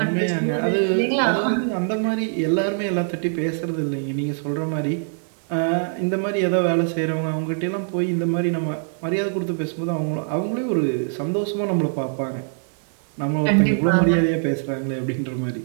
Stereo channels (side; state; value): left; silent; digital silence